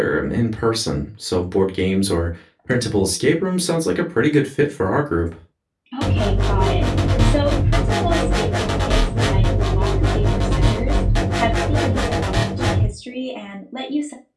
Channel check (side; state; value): both; identical; correlation 1.00